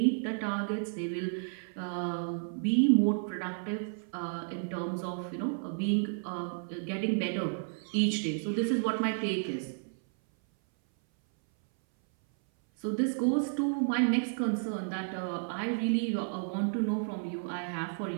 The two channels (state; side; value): silent; left; 57 dB below the other